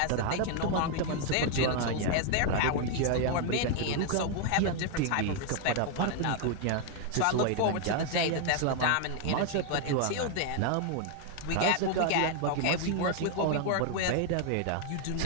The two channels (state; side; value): different; both; correlation 0.00